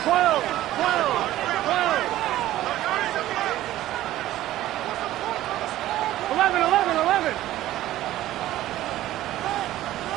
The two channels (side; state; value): left; quieter; 14.5 dB